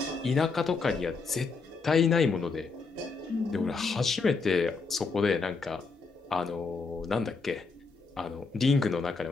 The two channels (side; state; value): right; quieter; 4.5 dB